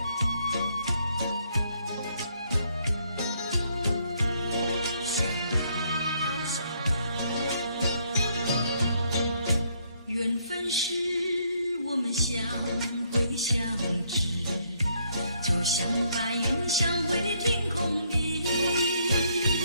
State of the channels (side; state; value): both; inverted; correlation -0.70